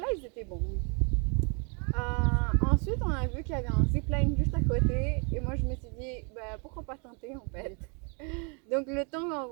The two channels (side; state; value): left; quieter; 35.8 dB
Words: ils étaient bons. Ensuite, on a vu qu'il y avait un zipline juste à côté. Et moi, je me suis dit, bah, pourquoi pas tenter en fait. Donc, le